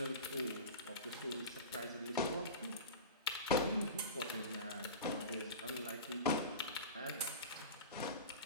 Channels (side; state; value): both; inverted; correlation -0.30